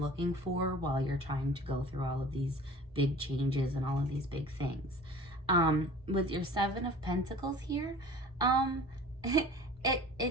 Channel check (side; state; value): both; normal; correlation 0.43